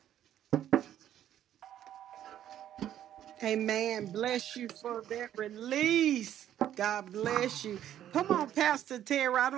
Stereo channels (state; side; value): quieter; left; 11.2 dB